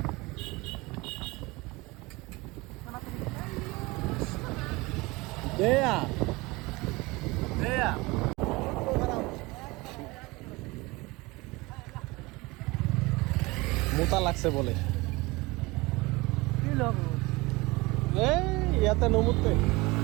মোটা লাগছে বলে, এই ইয়াতে নমুতে।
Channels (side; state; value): left; quieter; 23.1 dB